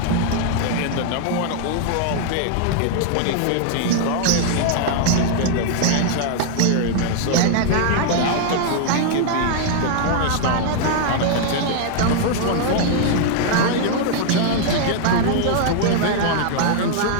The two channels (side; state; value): both; different; correlation 0.00